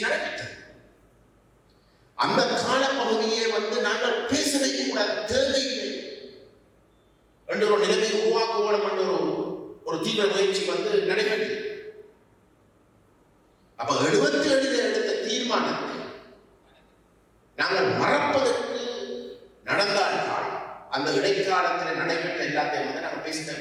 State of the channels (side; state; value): both; identical; correlation 1.00